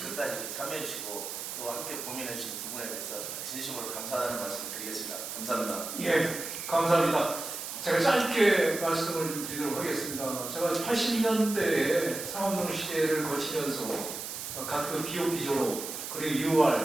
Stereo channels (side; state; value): right; noise; hiss, 7 dB below the sound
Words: 이렇게 참여해 주시고 또 함께 고민해 주신 부분에 대해서 진심으로 감사하다는 말씀 드리겠습니다. 감사합니다. 예, 감사합니다. 제가 짧게 말씀을 드리도록 하겠습니다. 제가 80년대에 상업농 시대를 거치면서 각급 BOP 졸업, 그리고